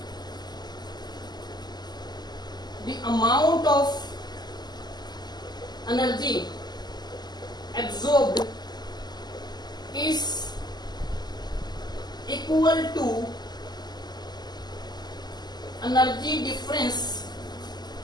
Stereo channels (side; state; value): right; late; 0.20 ms